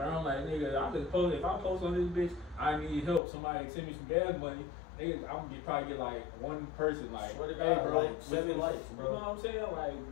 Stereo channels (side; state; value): right; drops out; at 3.2 s